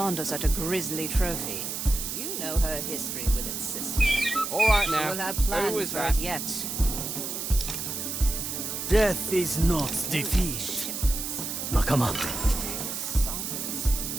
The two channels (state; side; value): noise; right; hiss, 4 dB below the sound